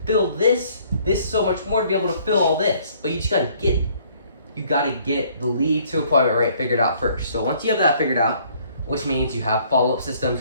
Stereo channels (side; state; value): both; inverted; correlation -0.61